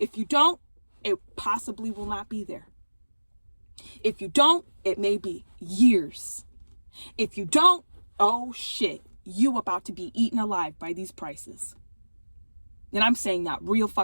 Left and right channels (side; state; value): both; inverted; correlation -1.00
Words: you don't, it possibly will not be there. If you don't, it may be years. If you don't, oh shit, you about to be eaten alive by these prices. And I'm saying that real